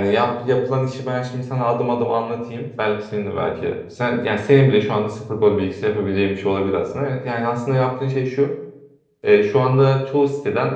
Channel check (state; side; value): identical; both; correlation 1.00